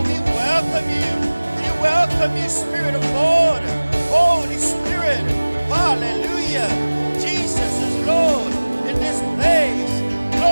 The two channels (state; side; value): inverted; both; correlation -1.00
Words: we welcome you. We welcome you, Spirit of God. Holy Spirit, hallelujah. Jesus is Lord in this place.